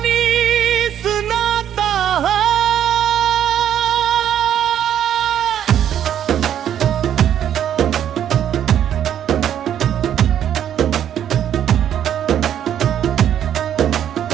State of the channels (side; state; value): left; quieter; 10.1 dB